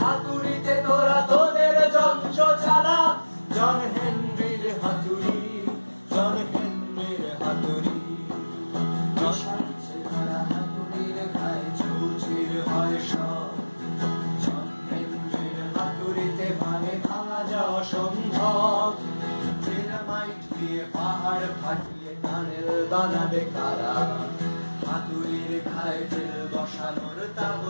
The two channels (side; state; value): both; inverted; correlation -1.00